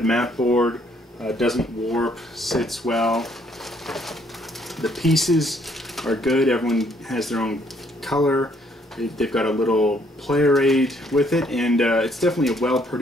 mat board, doesn't warp, sits well. The pieces are good. Everyone has their own color. They've got a little player aid with it, and it's definitely a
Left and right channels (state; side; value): normal; both; correlation 0.67